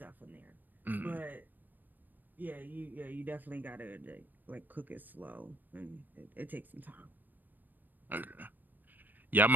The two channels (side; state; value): left; late; 0.090 ms